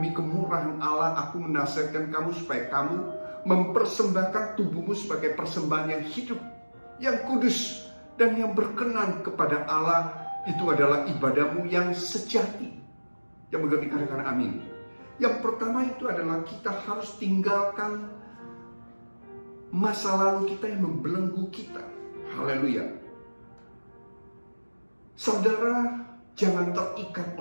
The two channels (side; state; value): both; inverted; correlation -1.00